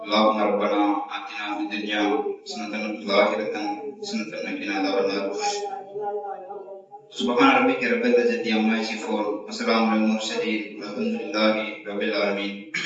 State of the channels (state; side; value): identical; both; correlation 1.00